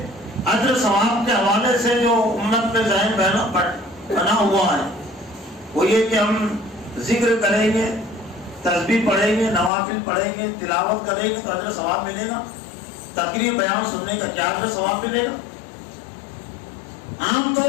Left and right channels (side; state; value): right; drops out; at 9.7 s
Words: اجر ثواب کے حوالے سے جو امت میں ذہن بنا ہوا ہے وہ یہ کہ ہم ذکر کریں گے، تسبیح پڑھیں گے، نوافل پڑھیں گے، تلاوت کریں گے تو اجر ثواب ملے گا. تقریر بیان سننے کا کیا اجر ثواب ملے گا؟ عام